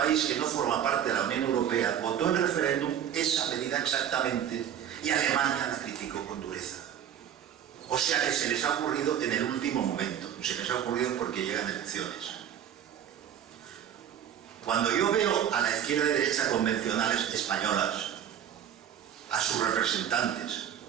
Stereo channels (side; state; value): left; quieter; 9.5 dB